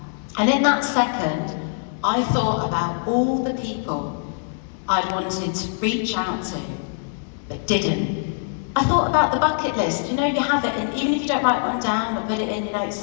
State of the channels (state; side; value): silent; right; 63 dB below the other